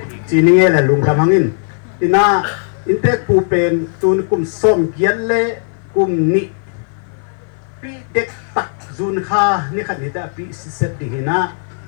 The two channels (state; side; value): silent; right; 55 dB below the other